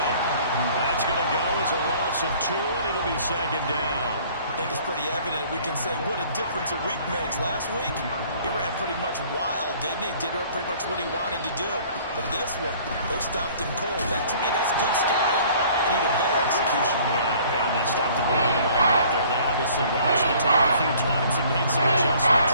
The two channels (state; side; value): inverted; both; correlation -0.54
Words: That's going to go as a loss of 2, and it'll be 2nd down. I think it's pretty evident. We can say what a difference a week makes. Last week, he ran pretty much wild, didn't he? Did pretty much what he wanted to do. But this one, they stopped him cold. That, to me, that's good scouting and even better execution. Yeah, and they stopped him behind the line right there. They obviously watched the tape a few times and made some